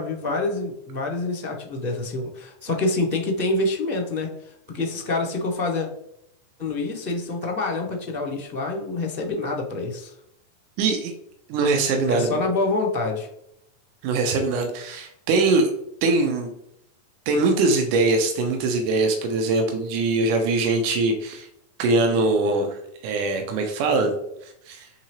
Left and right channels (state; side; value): late; left; 10 ms